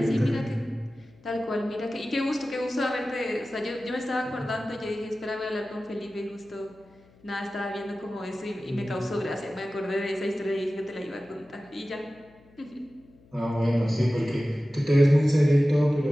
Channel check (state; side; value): noise; left; hum, 28 dB below the sound